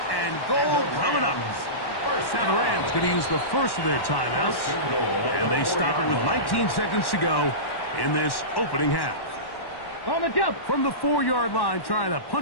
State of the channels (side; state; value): right; late; 1.1 ms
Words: and goal coming up. Now the Rams going to use the first of their timeouts. And they stop it with 19 seconds to go in this opening half. On the jump. From the 4-yard line, trying to